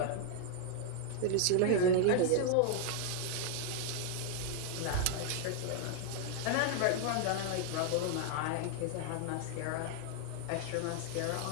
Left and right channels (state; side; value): different; both; correlation 0.00